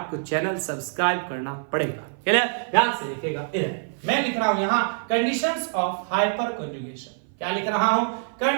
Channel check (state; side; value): silent; left; 55 dB below the other